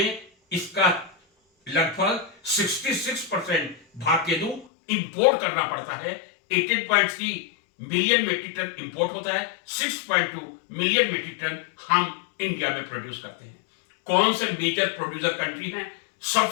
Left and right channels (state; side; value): drops out; right; at 4.7 s